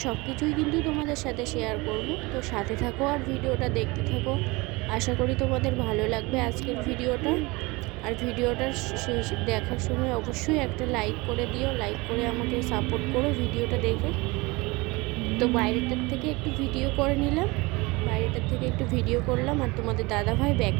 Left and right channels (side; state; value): left; quieter; 24.2 dB